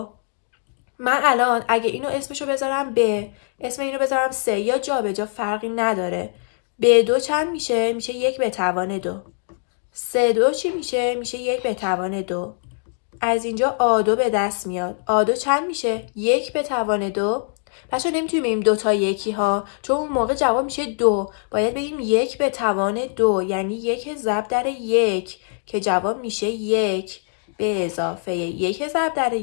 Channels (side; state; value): right; silent; 64 dB below the other